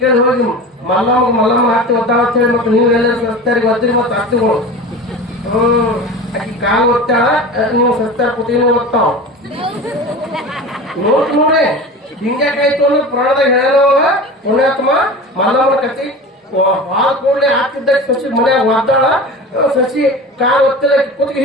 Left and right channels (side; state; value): both; normal; correlation 0.33